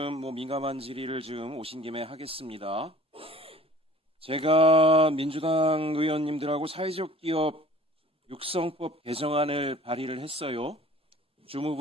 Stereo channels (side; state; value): both; normal; correlation 0.48